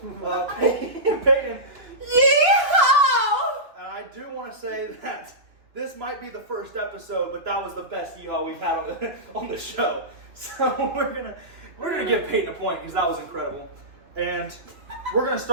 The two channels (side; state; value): left; late; 2.9 ms